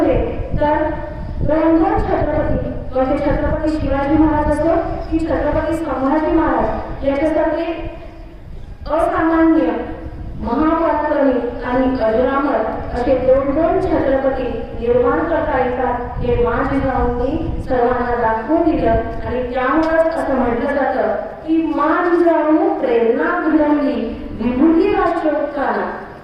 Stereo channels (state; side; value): identical; both; correlation 1.00